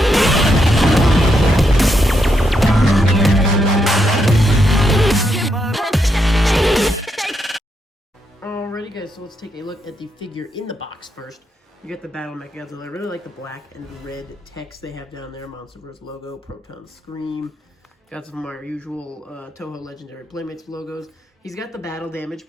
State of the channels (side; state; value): both; normal; correlation 0.80